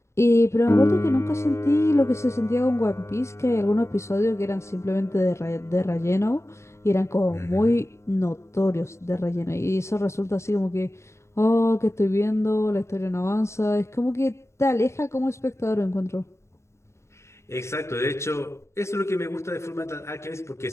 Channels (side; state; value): right; late; 0.13 ms